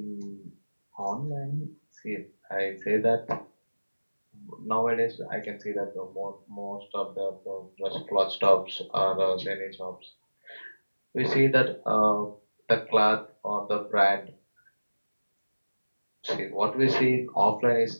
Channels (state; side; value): inverted; both; correlation -1.00